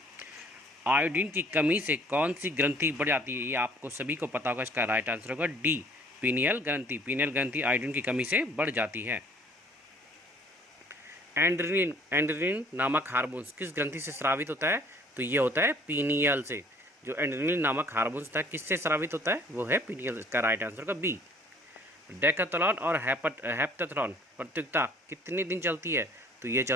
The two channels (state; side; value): normal; both; correlation 0.56